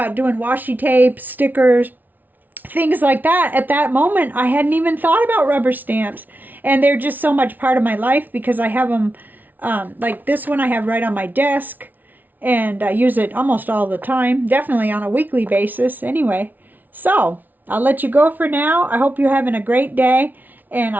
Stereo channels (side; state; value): left; late; 0.083 ms